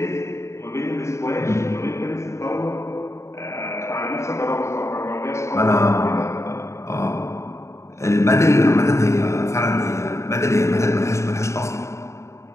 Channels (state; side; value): late; right; 0.14 ms